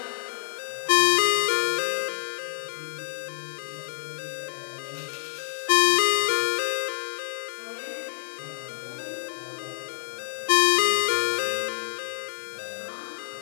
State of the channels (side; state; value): right; silent; digital silence